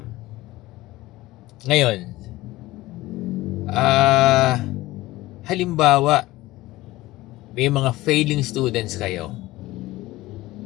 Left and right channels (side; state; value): right; quieter; 18.2 dB